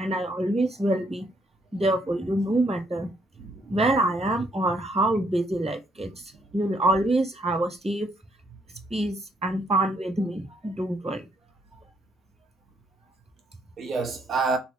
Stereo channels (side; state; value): both; normal; correlation 0.71